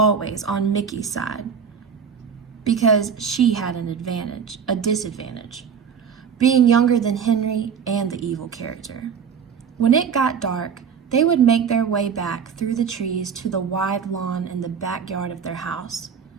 on Mickey's side, because she had a disadvantage, being younger than Henry and the evil character. When it got dark, they would make their way back through the trees to the wide lawn in the backyard of their house,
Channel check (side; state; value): left; quieter; 6.9 dB